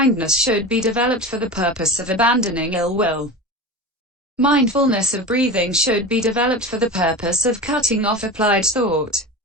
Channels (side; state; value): both; normal; correlation 0.28